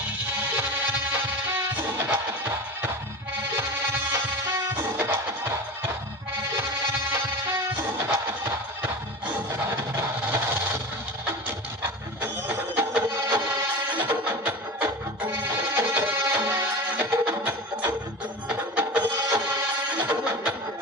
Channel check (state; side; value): normal; both; correlation 0.30